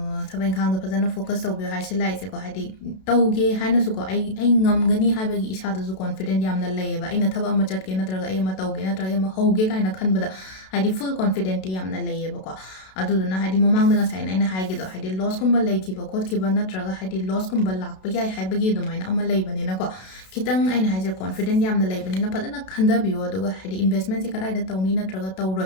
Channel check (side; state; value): right; late; 32 ms